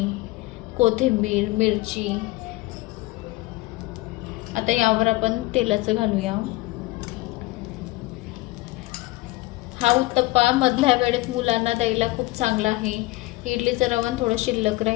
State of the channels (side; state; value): right; quieter; 20.1 dB